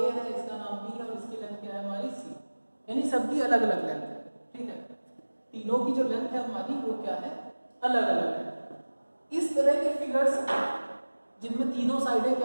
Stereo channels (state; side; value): inverted; both; correlation -1.00